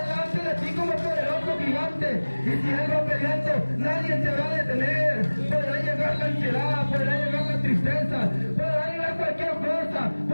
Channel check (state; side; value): inverted; both; correlation -1.00